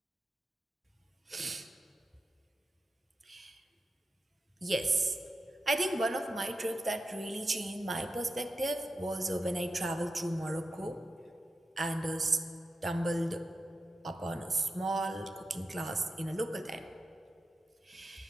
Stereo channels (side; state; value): both; normal; correlation 0.90